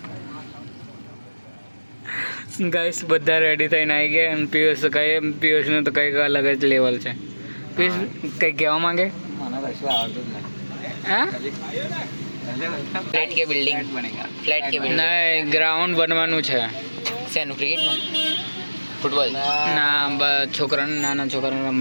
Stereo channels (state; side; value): inverted; both; correlation -1.00